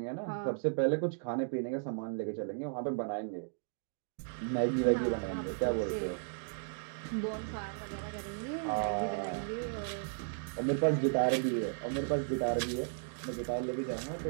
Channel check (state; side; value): silent; left; digital silence